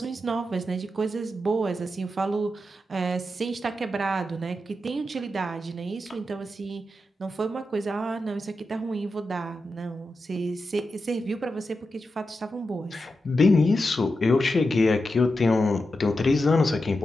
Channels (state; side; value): normal; both; correlation 0.89